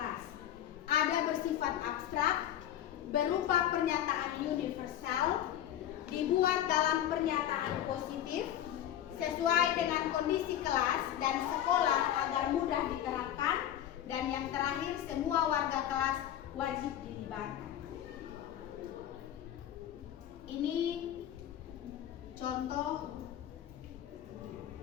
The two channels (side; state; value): right; quieter; 11.3 dB